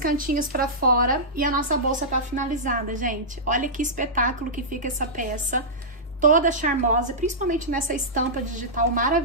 pra fora e a nossa bolsa tá finalizada, gente. Olha que espetáculo que fica essa peça, toda charmosa, principalmente nessa estampa digital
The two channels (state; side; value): normal; both; correlation -0.14